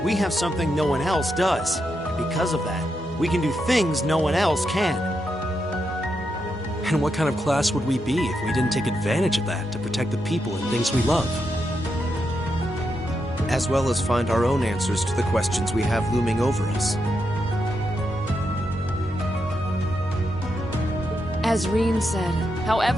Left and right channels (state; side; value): normal; both; correlation 0.84